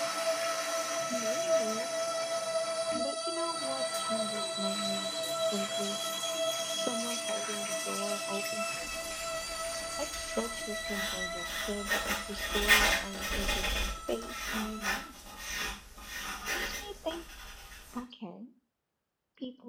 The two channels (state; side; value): identical; both; correlation 1.00